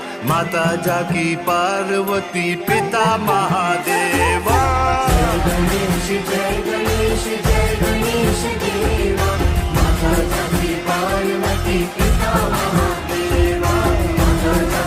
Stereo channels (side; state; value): both; identical; correlation 1.00